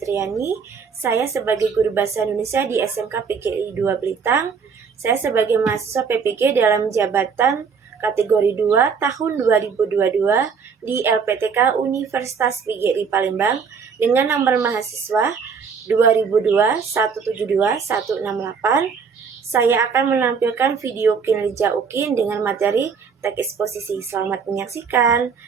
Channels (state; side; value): quieter; left; 5.9 dB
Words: Saya sebagai guru bahasa Indonesia di SMK PGRI 2 Blitang. Saya sebagai mahasiswa PPG dalam jabatan kategori 2 tahun 2022 di LPTK Universitas PGRI Palembang dengan nomor mahasiswa 2002 172 168. Saya akan menampilkan video kinerja UKIN dengan materi teks eksposisi. Selamat menyaksikan.